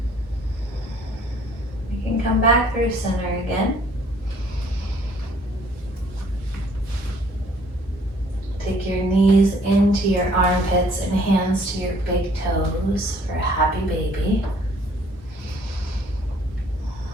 You can come back through center again. Take your knees into your armpits and hands to your big toes for a happy baby.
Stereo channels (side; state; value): both; normal; correlation 0.59